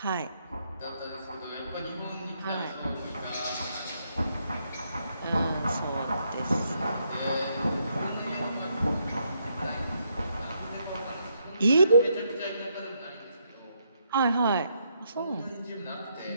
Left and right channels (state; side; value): inverted; both; correlation -0.76